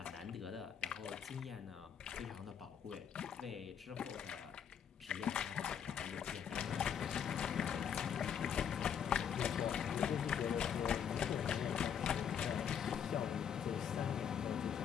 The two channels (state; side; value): quieter; right; 8.1 dB